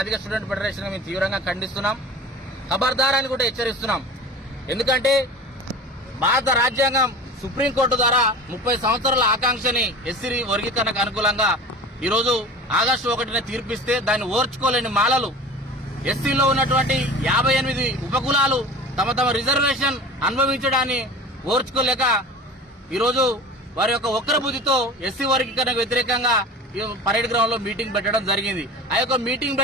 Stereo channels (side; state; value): both; normal; correlation 0.37